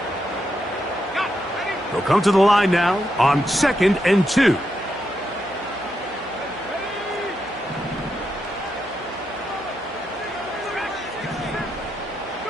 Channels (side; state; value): right; noise; hum, 23 dB below the sound